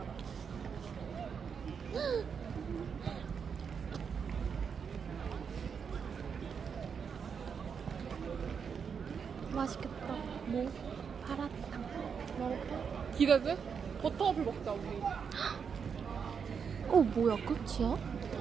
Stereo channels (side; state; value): left; quieter; 6.5 dB